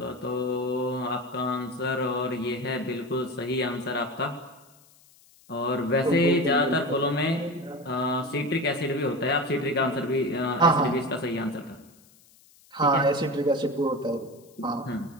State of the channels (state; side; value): noise; left; hiss, 28 dB below the sound